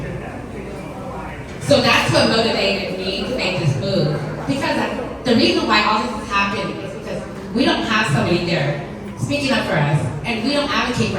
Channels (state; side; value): identical; both; correlation 1.00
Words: So that's what motivated me to make this move. Because the reason why all this has happened is because we don't have somebody there speaking up for us, and we don't advocate for